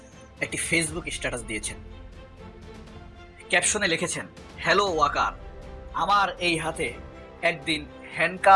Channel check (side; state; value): both; identical; correlation 1.00